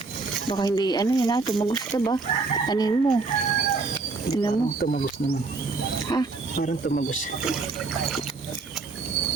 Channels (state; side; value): quieter; left; 4.0 dB